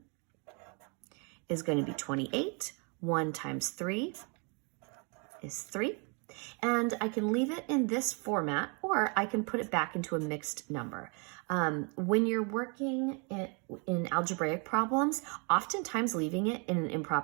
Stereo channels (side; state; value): left; quieter; 35.0 dB